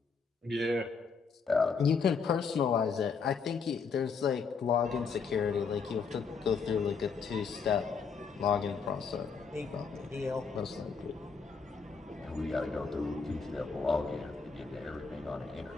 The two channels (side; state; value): right; quieter; 5.4 dB